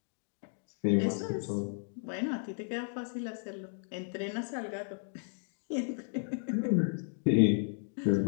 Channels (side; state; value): right; silent; 55 dB below the other